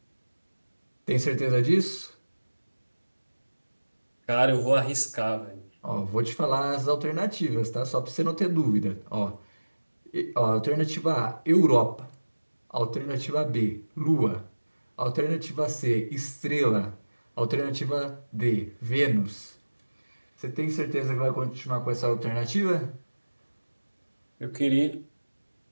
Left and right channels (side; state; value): both; inverted; correlation -1.00